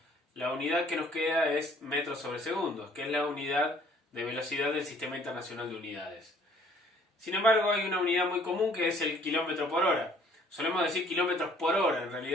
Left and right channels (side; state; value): both; normal; correlation 0.58